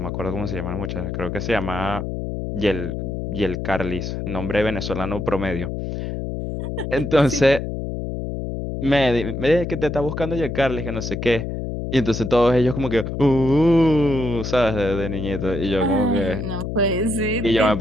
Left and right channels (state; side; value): noise; left; hum, 4 dB below the sound